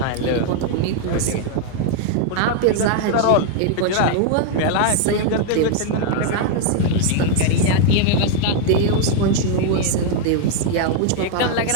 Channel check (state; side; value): different; both; correlation 0.00